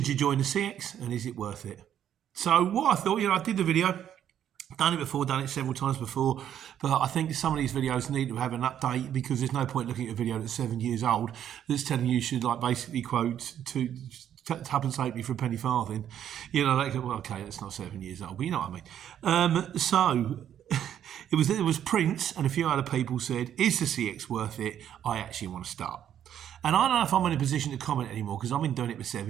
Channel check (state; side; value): quieter; left; 10.1 dB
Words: you join the CX and is it worth it? So what I thought, I did the video, done it before, done it several times before, but I think some of these videos need to have an update because there's no point looking at a video that's 7 years old that's telling you should basically quote to Tuppence halfpenny for a penny farthing. Okay, that's not 7 years old, but you know what I mean. So it was Prince and a few other people said, is the CX worth it? I actually want to start. And I don't know if I'm in a position to comment anymore because I've been doing it for